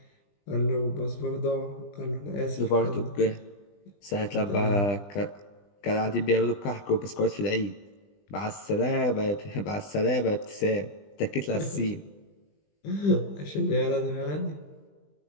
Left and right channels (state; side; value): late; right; 20 ms